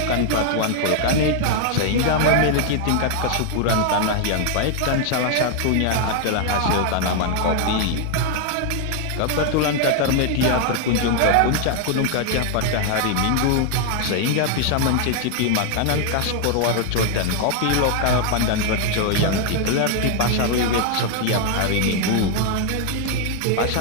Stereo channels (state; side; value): different; both; correlation 0.00